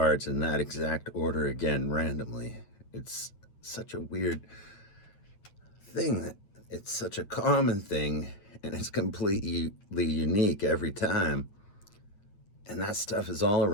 in that exact order again randomly. It's such a weird thing that it's such a common thing and it's completely unique every time. And that stuff is all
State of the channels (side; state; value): right; late; 9.0 ms